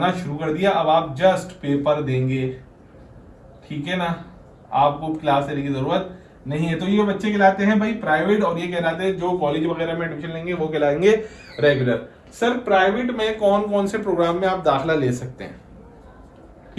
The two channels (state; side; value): identical; both; correlation 1.00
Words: शुरू कर दिया। अब आप जस्ट पेपर देंगे, ठीक है ना, आपको क्लास लेने की जरूरत नहीं है। तो ये बच्चे कहलाते हैं भाई प्राइवेट, और ये कहलाते हैं जो कॉलेज वगैरह में एडमिशन लेंगे वो कहलाएंगे रेगुलर। सर प्राइवेट में कौन कौन से प्रोग्राम में आप दाखिला ले सकते हैं,